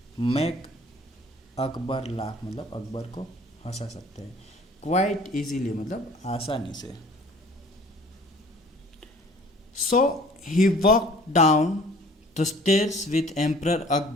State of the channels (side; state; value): both; normal; correlation 0.51